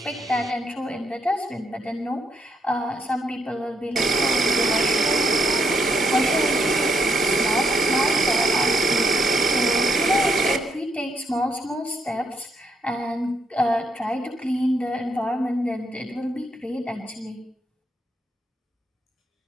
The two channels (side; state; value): both; normal; correlation 0.77